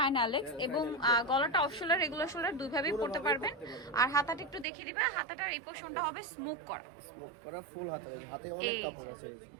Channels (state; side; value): drops out; left; at 4.7 s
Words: অ্যালেক্স, এবং গলাটা অফ শোল্ডার, রেগুলার শোল্ডার দুইভাবেই পড়তে পারবেন। আর হাতাটা একটু দেখিয়ে দিবে, হাতাটার এই পোরশনটা হবে স্মোক করা, ফুল হাতে অনেক কাপড় আছে,